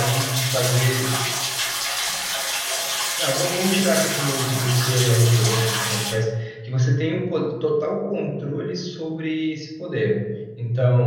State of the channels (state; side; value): identical; both; correlation 1.00